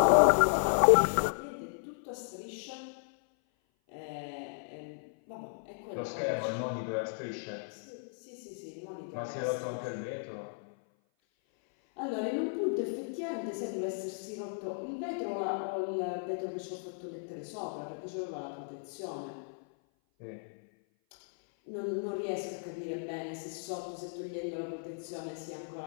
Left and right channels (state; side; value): silent; right; 55 dB below the other